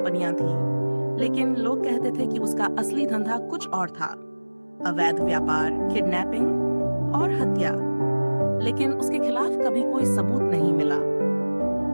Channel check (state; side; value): inverted; both; correlation -1.00